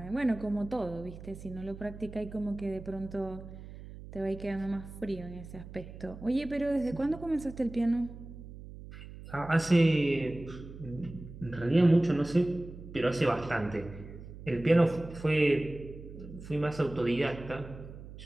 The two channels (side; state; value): right; noise; hum, 14 dB below the sound